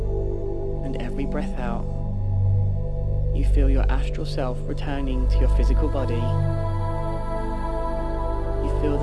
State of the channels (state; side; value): identical; both; correlation 1.00